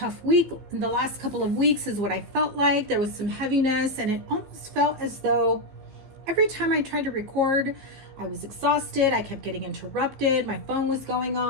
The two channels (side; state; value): left; late; 15 ms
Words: week. The last couple of weeks is what I felt like. There was some heaviness, and it almost felt as though every time I tried to record, I was exhausted. I kept getting interrupted. My phone was going